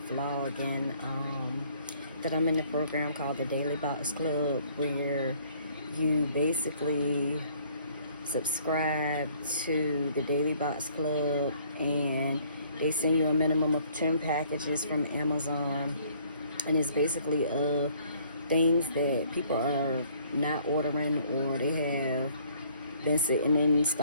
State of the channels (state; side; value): inverted; both; correlation -0.60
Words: vlogging that I'm in a program called the Daily Box Club, where you basically subscribe to the Daily Box Club and they send you a minimum of 10 packages from Amazon, and it's basically things that people are not ordering, or they have been sitting in